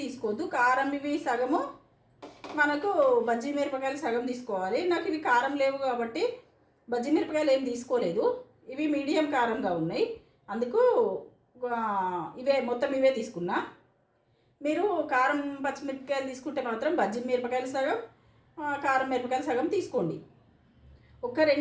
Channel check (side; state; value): both; identical; correlation 1.00